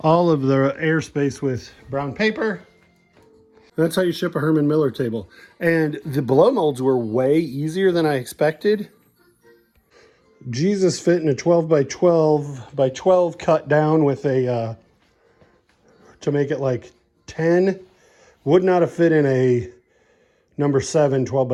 of the airspace with brown paper. That's how you ship a Herman Miller table. And the blow molds were way easier than I expected. Jesus fit in a 12 by 12 cut down with a, to make it like 10. Would not have fit in a number 7, 12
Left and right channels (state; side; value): identical; both; correlation 1.00